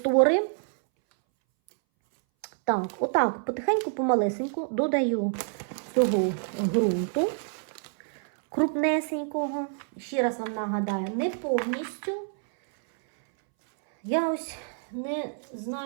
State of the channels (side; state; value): left; silent; 60 dB below the other